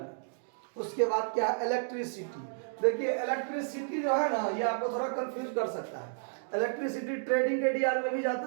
उसके बाद क्या है? इलेक्ट्रिसिटी। देखिए इलेक्ट्रिसिटी जो है ना, ये आपको थोड़ा कंफ्यूज कर सकता है। इलेक्ट्रिसिटी ट्रेडिंग के डीआर में भी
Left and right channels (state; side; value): silent; left; digital silence